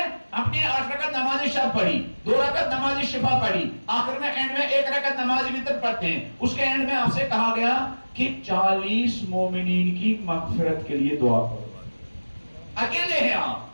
اپنے 8 رکعت نماز شب پڑھی، 2 رکعت نماز شفا پڑھی، آخر میں اینڈ میں 1 رکعت نماز وتر پڑھتے ہیں. اس کے اینڈ میں آپ سے کہا گیا کہ 40 مومنین کی مغفرت کے لیے دعا کرو. اکیلے ہیں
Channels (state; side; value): inverted; both; correlation -1.00